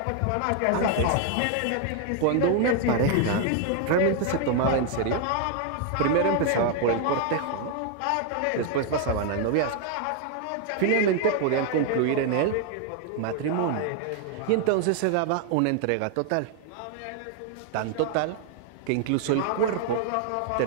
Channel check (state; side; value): different; both; correlation 0.00